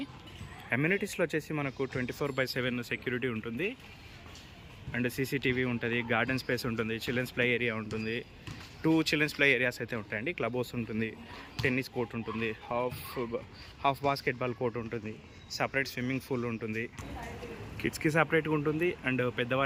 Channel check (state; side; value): identical; both; correlation 1.00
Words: అమ్యూనిటీస్లో వచ్చేసి మనకు 24/7 సెక్యూరిటీ ఉంటుంది అండ్ CCTV ఉంటుంది, గార్డెన్ స్పేస్ ఉంటుంది, చిల్డ్రన్స్ ప్లే ఏరియా ఉంటుంది, 2 చిల్డ్రన్స్ ప్లే ఏరియాస్ అయితే ఉంటాయండి. క్లబ్ హౌస్ ఉంటుంది, టెన్నిస్ కోర్ట్ ఉంటుంది, హాఫ్ బాస్కెట్బాల్ కోర్ట్ ఉంటుంది, సపరేట్ స్విమ్మింగ్ పూల్ ఉంటుంది, కిడ్స్కి సపరేట్గా ఉంటుంది అండ్